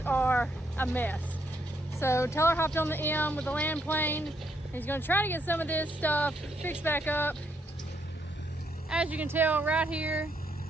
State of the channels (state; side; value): normal; both; correlation 0.75